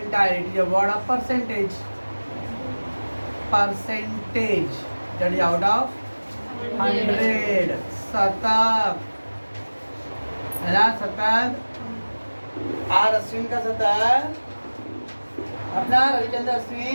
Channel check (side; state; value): both; inverted; correlation -1.00